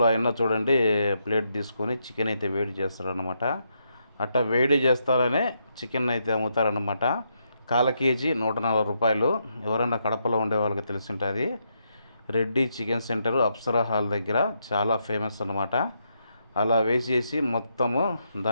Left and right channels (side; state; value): both; inverted; correlation -0.79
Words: అయినా చూడండి, ప్లేట్ తీసుకొని చికెన్ అయితే వేడి చేస్తారనమాట. అట్లా వేడి చేస్తారనే చికెన్ అయితే అమ్ముతారనమాట. కాల కేజీ 140 రూపాయలు. ఎవరైనా కడపలో ఉండే వాళ్ళకి తెలిసి ఉంటుంది. Reddy chicken centre Apsara hall దగ్గర చాలా ఫేమస్ అనమాట. అలా వేసేసి మొత్తము